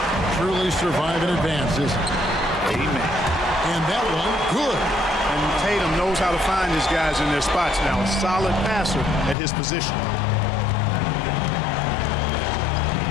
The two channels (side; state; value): right; drops out; at 9.3 s